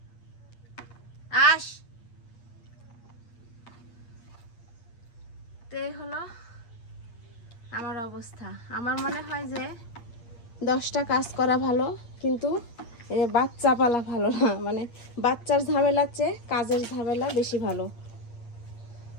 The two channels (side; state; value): right; late; 8.5 ms